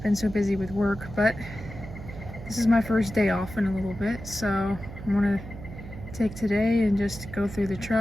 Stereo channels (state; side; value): noise; right; hum, 12 dB below the sound